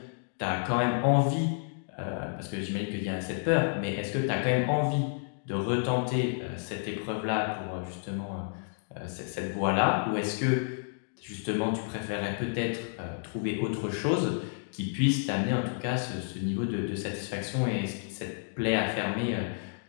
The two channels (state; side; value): silent; right; digital silence